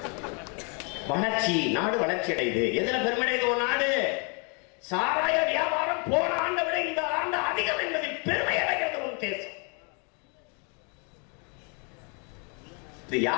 வளர்ச்சி, நாடு வளர்ச்சி அடையுது. எதுல பெருமடையுது ஒரு நாடு? சாராய வியாபாரம் போன ஆண்டை விட இந்த ஆண்டு அதிகம் என்பதில் பெருமை அடைகிறது ஒரு தேசம். இது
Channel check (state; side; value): quieter; right; 36.3 dB